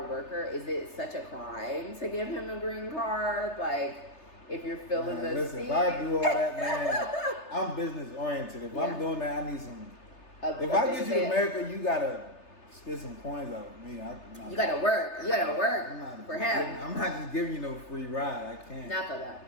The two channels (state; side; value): late; right; 3.3 ms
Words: worker, is it such a crime to give him a green card? Like, if you're feeling the listen, scene. if I do all that, man, I'm business oriented. If I'm doing that, I need some. If I get you to America, you gotta spit some coins out of me. You gotta work. You gotta work for him. I'm not just giving you no free ride. I can't. Not for that.